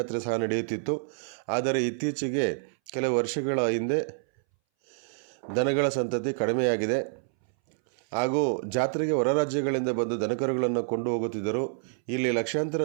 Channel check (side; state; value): left; silent; 59 dB below the other